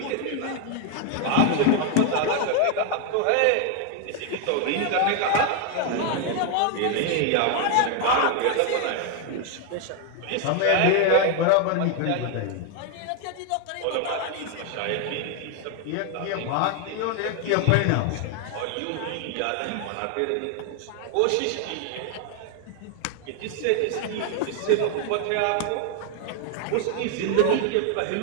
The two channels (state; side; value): different; both; correlation 0.01